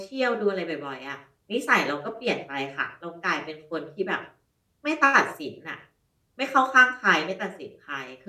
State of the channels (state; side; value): identical; both; correlation 1.00